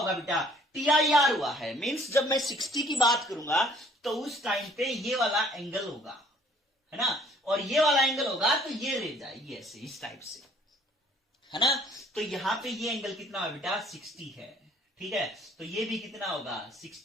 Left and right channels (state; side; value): normal; both; correlation 0.58